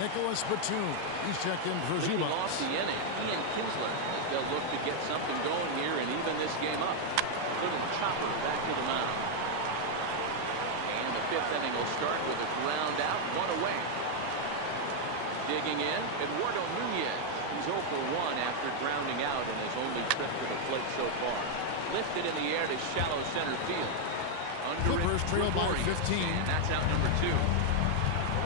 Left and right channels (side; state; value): both; different; correlation 0.00